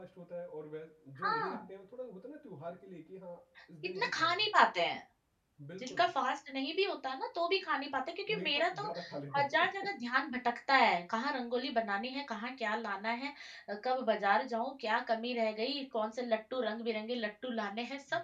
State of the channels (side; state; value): both; identical; correlation 1.00